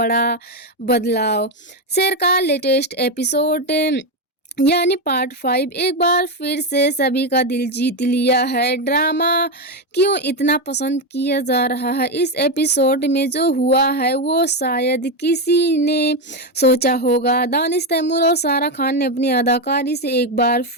बदलाव। शेर का लेटेस्ट एपिसोड यानी पार्ट 5 एक बार फिर से सभी का दिल जीत लिया है। ड्रामा क्यों इतना पसंद किया जा रहा है? इस एपिसोड में जो हुआ है वो शायद किसी ने सोचा होगा। दानिश तैमूर और सारा खान ने अपनी अदाकारी से एक बार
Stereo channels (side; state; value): both; normal; correlation 0.09